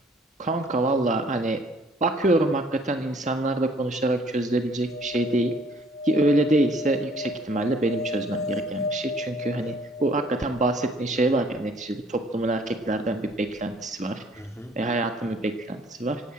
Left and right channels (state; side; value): normal; both; correlation 0.59